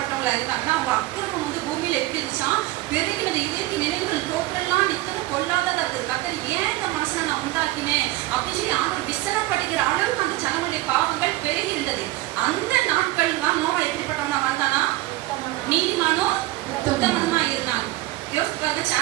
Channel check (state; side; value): quieter; left; 17.8 dB